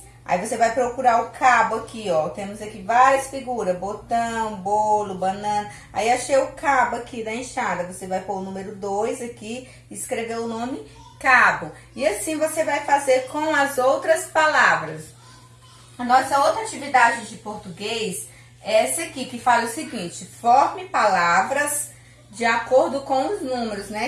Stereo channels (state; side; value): identical; both; correlation 1.00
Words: Aí você vai procurar o cabo aqui, ó. Temos aqui várias figuras. Botão, bolo, banana. Aí achei o cabo aqui da enxada. Você vai pôr o número 2 aqui e escrever o nome cabo. E assim você vai fazer com as outras palavras. A nossa outra atividade de português é essa aqui, que fala o seguinte: forme palavras de acordo com os números,